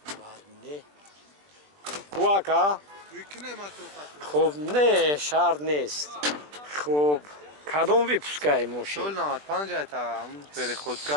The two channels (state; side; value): late; left; 20 ms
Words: بعد نه کواکا خب نه شرط نیست خب کدوم ویپسکای ماشین سول 95 تا هم پری